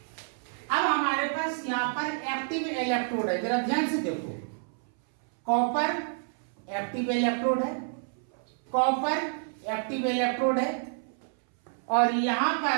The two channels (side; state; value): left; silent; 59 dB below the other